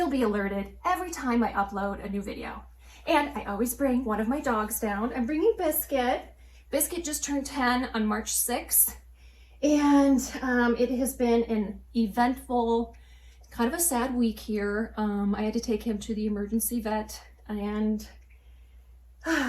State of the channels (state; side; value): identical; both; correlation 1.00